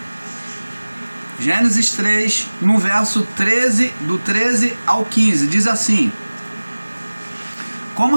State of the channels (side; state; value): both; inverted; correlation -1.00